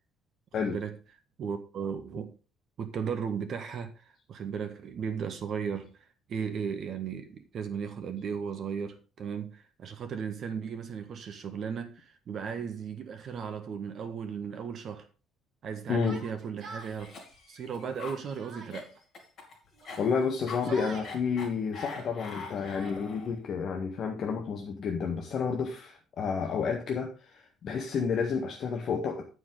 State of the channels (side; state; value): both; normal; correlation 0.66